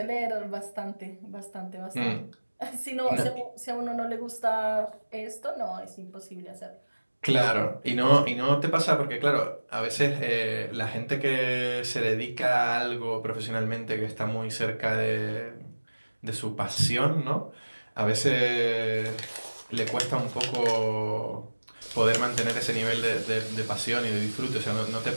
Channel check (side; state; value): both; inverted; correlation -1.00